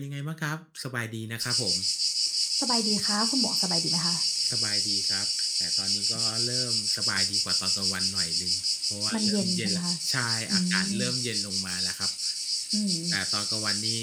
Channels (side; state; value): both; identical; correlation 1.00